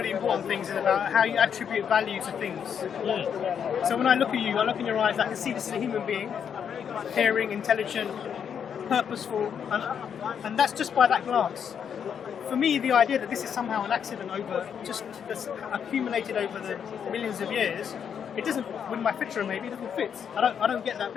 important things is about how you attribute value to things. So when I look at you, I look in your eyes, I can see this is a human being, caring, intelligent, purposeful, and that's just by that glance. For me, the idea that this is somehow an accident that's accumulated over the millions of years, it doesn't, with my picture maybe, it doesn't fit. I don't get that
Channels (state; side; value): quieter; right; 7.8 dB